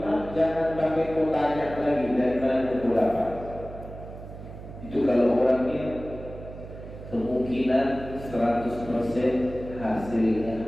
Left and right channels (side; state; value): right; noise; hum, 13 dB below the sound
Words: jangan pakai kau tanya lagi dari mana kau dapat. Itu kalau orangnya kemungkinan 100% hasilnya